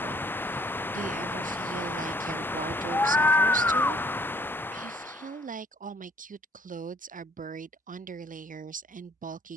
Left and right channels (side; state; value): both; normal; correlation 0.61